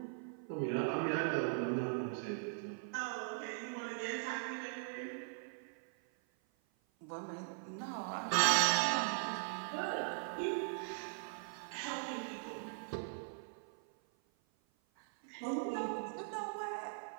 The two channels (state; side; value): silent; left; 51 dB below the other